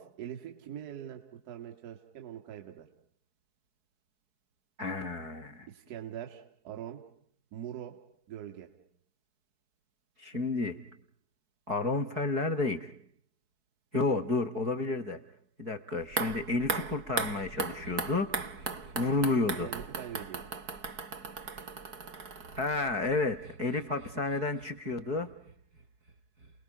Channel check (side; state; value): left; late; 4.7 ms